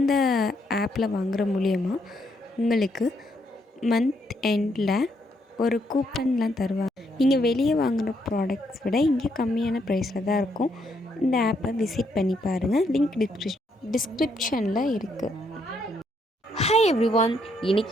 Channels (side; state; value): both; normal; correlation 0.74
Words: ஆப்பில் வாங்குகிற மூலியமாக உங்களுக்கு மந்த் எண்டில் ஒரு கூப்பன்லாம் தருவாங்க. நீங்கள் வெளியே வாங்குகிற ப்ராடக்ட்ஸ் விட இங்கே கம்மியான ப்ரைஸில் தான் இருக்கும். இந்த ஆப்பை விசிட் பண்ணி பாருங்கள். லிங்க் டிஸ்கிரிப்ஷனில் இருக்குது. ஹாய் எவ்ரிவான்,